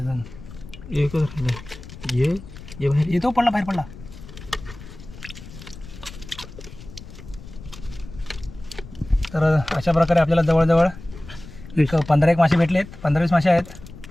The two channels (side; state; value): left; noise; rumble, 16 dB below the sound